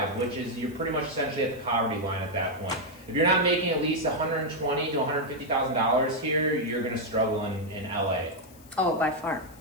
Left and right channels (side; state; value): left; noise; hiss, 24 dB below the sound